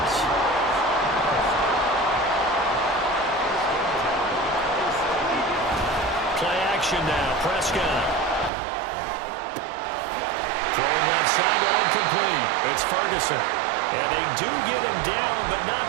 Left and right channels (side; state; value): left; drops out; at 8.5 s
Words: Play action now. Prescott. Throwing left sideline complete. It's Ferguson. And they do get him down, but not